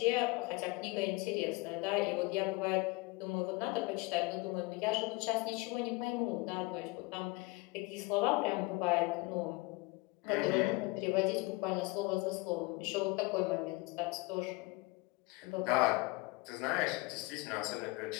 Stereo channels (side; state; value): right; quieter; 24.7 dB